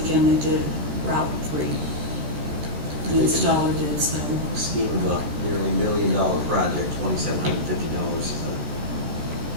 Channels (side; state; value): left; late; 14 ms